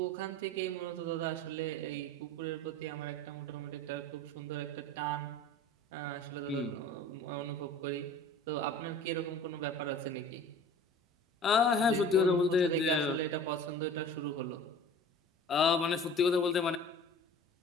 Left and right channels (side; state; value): both; normal; correlation 0.42